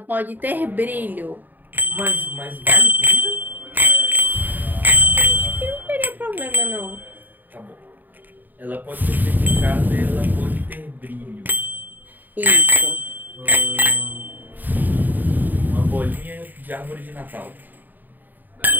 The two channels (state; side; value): late; left; 0.088 ms